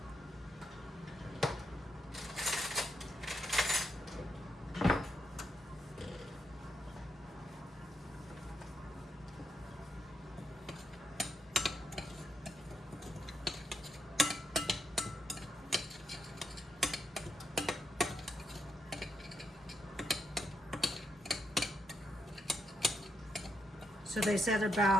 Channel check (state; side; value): normal; both; correlation 0.80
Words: So they said